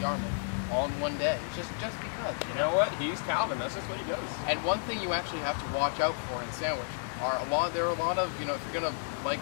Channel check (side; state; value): right; silent; digital silence